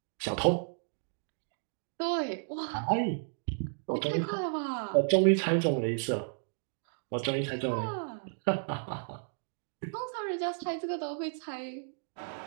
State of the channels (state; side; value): silent; left; digital silence